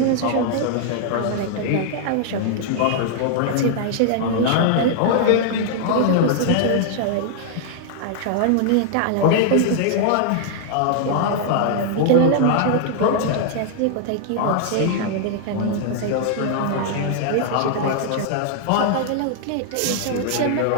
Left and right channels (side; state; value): both; different; correlation -0.01